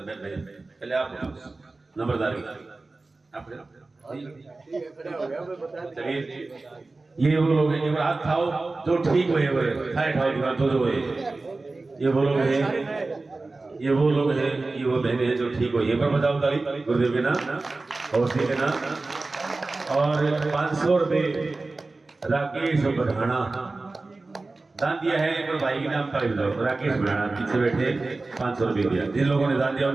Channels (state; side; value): quieter; left; 3.4 dB